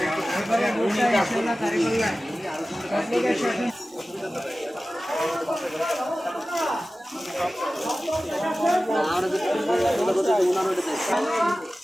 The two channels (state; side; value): normal; both; correlation 0.96